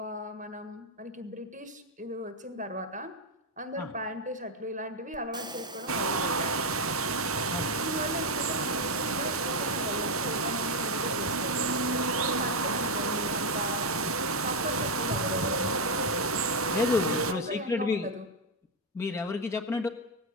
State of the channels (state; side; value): normal; both; correlation 0.05